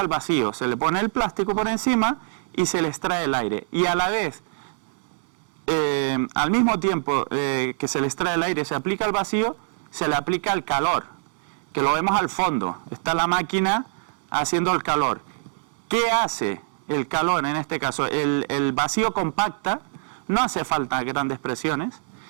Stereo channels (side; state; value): left; silent; digital silence